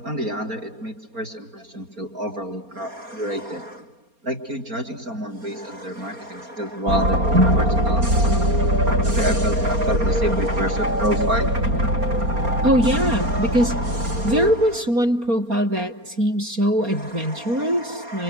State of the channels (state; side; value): late; left; 4.3 ms